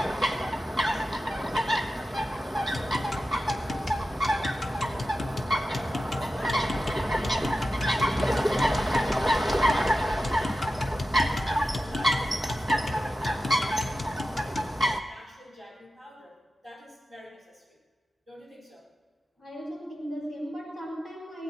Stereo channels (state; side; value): normal; both; correlation 0.93